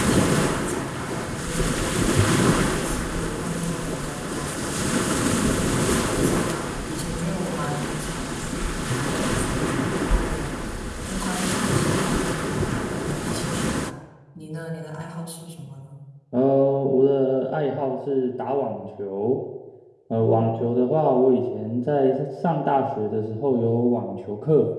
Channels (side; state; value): both; identical; correlation 1.00